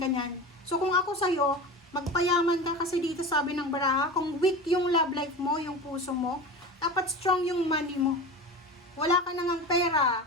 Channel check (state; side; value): normal; both; correlation 0.30